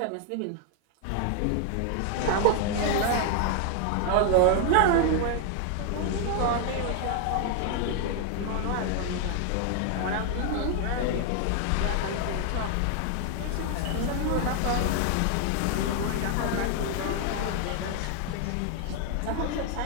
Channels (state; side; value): different; both; correlation 0.00